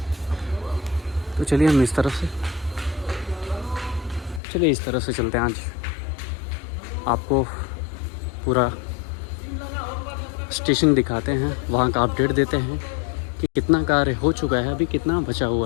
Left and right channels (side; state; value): right; drops out; at 4.4 s